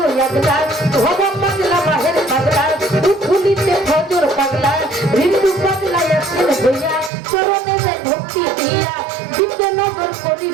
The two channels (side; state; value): left; drops out; at 7.1 s